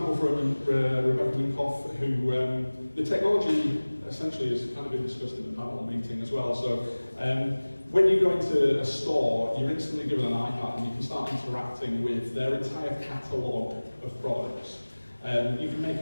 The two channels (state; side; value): inverted; both; correlation -1.00